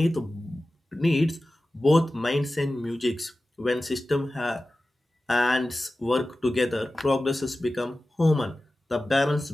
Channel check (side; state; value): both; normal; correlation 0.95